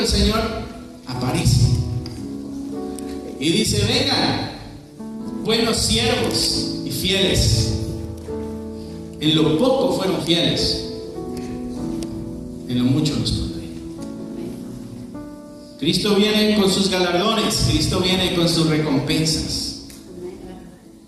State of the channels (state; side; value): identical; both; correlation 1.00